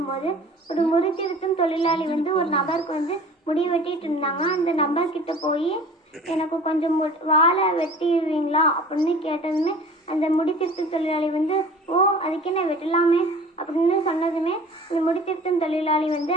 ஒரு முடி திருத்தும் தொழிலாளி ஒரு நபருக்கு முடி வெட்டிட்டு இருந்தாங்க. அந்த நபர்கிட்ட போய் எனக்கு கொஞ்சம் வாழை வெட்டிடுவீங்களா அப்படின்னு கேட்டதுமே அந்த முடி திருத்தும் தொழிலாளி ஓ அதுக்கு என்ன வெட்டலாமே அப்படின்னு சொன்னதுமே இந்த முடித்திருத்தும் தொழிலாளி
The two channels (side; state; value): both; normal; correlation 0.44